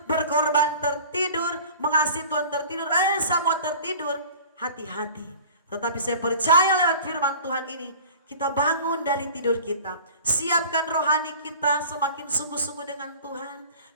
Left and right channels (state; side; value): inverted; both; correlation -0.43